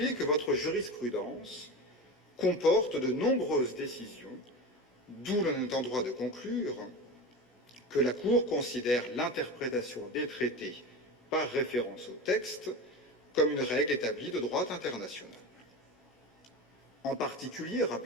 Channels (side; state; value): both; normal; correlation 0.27